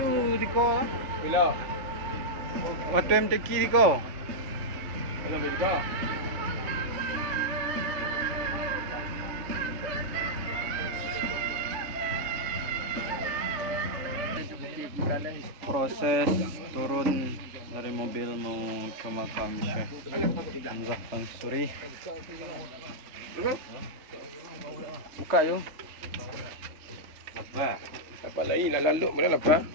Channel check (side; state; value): left; late; 3.6 ms